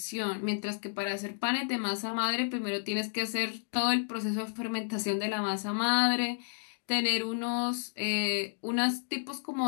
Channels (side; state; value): right; silent; digital silence